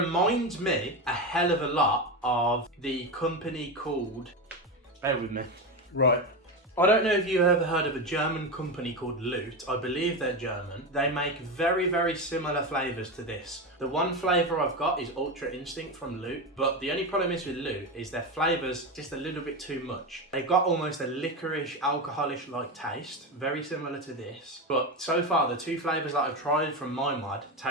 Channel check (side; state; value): both; normal; correlation 0.17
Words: me a hell of a lot of the company called, bear with me. Right. I don't know if you've ever heard of a German company called Loot. I believe they're German. They make very, very similar flavours to this. The one flavour I've got is Ultra Instinct from Loot, but the only problem is with Loot is their flavours just a little bit too much. They've got almost a licorice, alcoholish-like taste, very similar to this. But so far, the two flavours that I've tried from MyMod